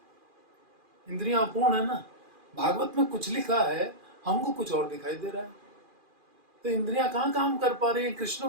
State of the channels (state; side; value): late; left; 2.4 ms